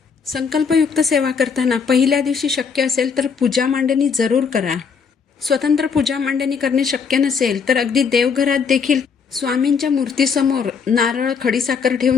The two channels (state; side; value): quieter; right; 6.0 dB